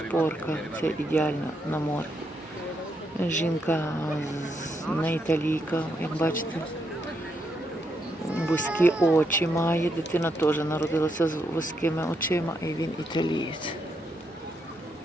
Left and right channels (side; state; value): both; normal; correlation 0.79